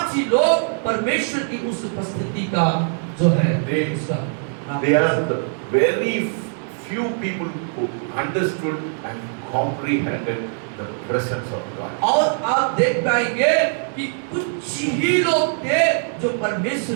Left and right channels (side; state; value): left; silent; 60 dB below the other